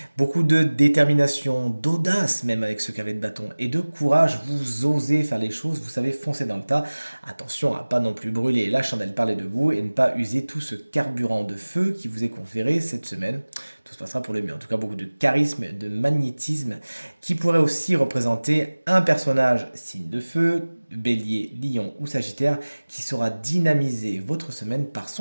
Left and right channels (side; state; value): both; inverted; correlation -1.00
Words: Beaucoup de détermination, d'audace même avec ce cavalier de bâton, et de courage, vous osez faire les choses, vous savez foncer dans le tas. Attention à pas non plus brûler la chandelle par les deux bouts et ne pas user tout ce carburant de feu qui vous est conféré cette semaine. Tout se passera pour le mieux. En tout cas, beaucoup de charisme, de magnétisme qui pourrait aussi représenter un personnage signe de feu, bélier, lion ou sagittaire qui saura dynamiser votre semaine par